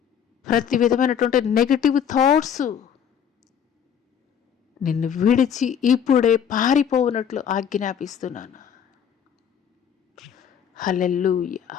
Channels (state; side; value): quieter; right; 8.2 dB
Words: నిన్ను విడిచి ఇప్పుడే పారిపోవునట్లు ఆజ్ఞాపిస్తున్నాను. హల్లెలూయా,